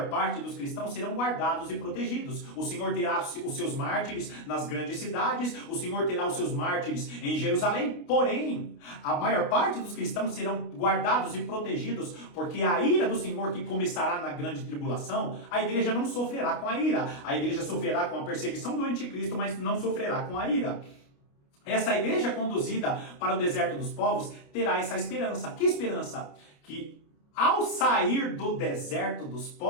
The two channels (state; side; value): late; right; 29 ms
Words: parte dos cristãos serão guardados e protegidos. O Senhor terá os seus mártires nas grandes cidades, o Senhor terá os seus mártires em Jerusalém, porém, a maior parte dos cristãos serão guardados e protegidos, porque a ira do Senhor que começará na grande tribulação, a igreja não sofrerá com a ira. A igreja sofrerá com a perseguição do anticristo, mas não sofrerá com a ira. Essa igreja conduzida para o deserto dos povos terá essa esperança. Que esperança? Que ao sair do deserto dos